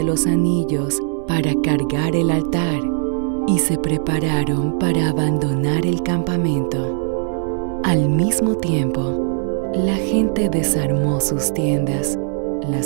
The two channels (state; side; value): silent; left; 66 dB below the other